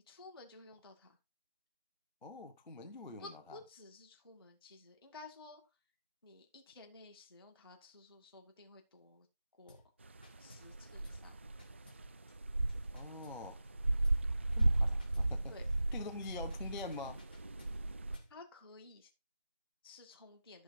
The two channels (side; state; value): both; inverted; correlation -0.93